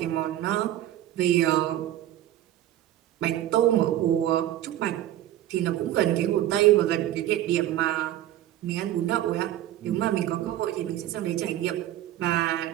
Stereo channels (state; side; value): quieter; left; 13.0 dB